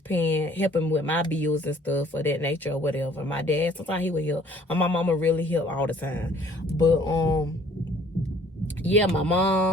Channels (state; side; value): normal; both; correlation 0.56